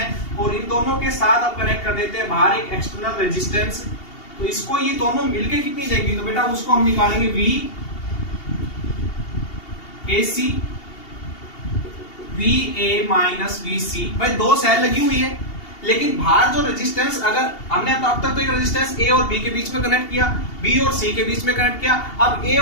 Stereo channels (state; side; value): late; right; 2.8 ms